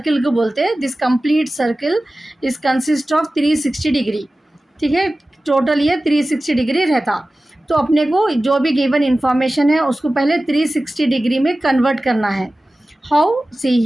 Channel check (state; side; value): normal; both; correlation 0.96